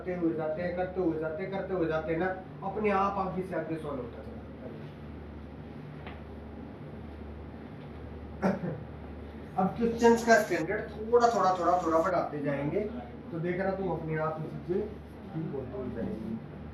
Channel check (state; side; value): identical; both; correlation 1.00